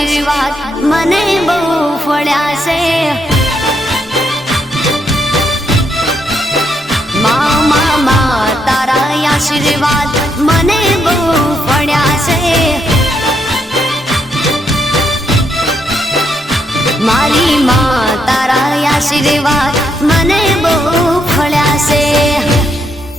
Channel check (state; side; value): normal; both; correlation 0.77